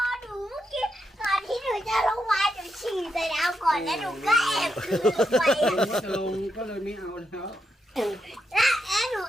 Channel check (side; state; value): both; normal; correlation 0.83